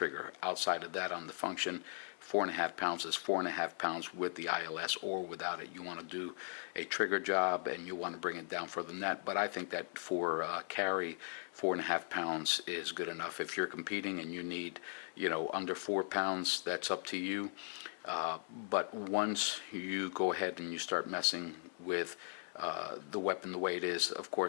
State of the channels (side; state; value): right; silent; 52 dB below the other